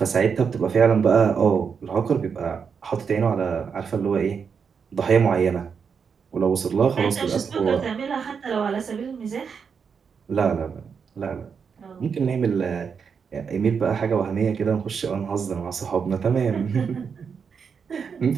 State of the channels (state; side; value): quieter; left; 6.3 dB